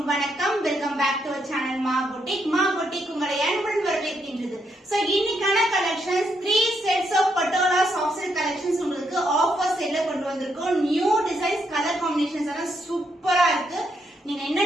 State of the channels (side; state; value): both; normal; correlation 0.78